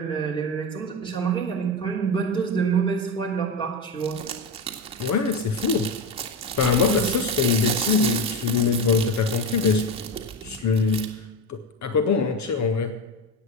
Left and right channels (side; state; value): both; normal; correlation 0.17